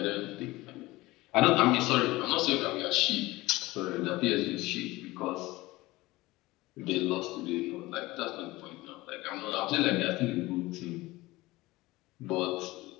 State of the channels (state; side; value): quieter; right; 19.8 dB